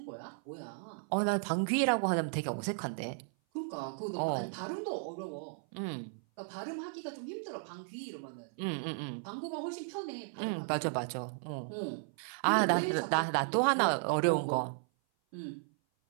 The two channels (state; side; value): silent; left; 55 dB below the other